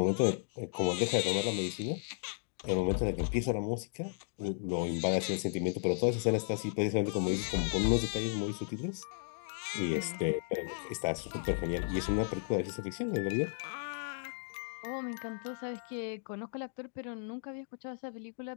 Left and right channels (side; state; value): right; silent; digital silence